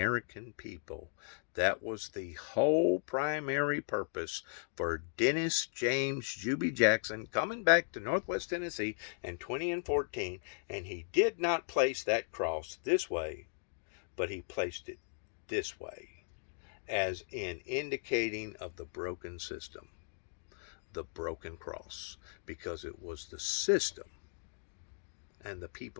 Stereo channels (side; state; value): right; silent; digital silence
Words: people. That was the whole primary purpose for Dennis James Juby Jackson coming back to Northwest Tennessee in 2014, and he did not place that cross this way, but he placed it this way, as in indicating of the broken system, the broken cross, because it was the system and the